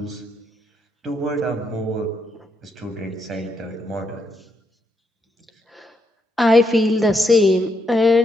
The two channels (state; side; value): normal; both; correlation 0.78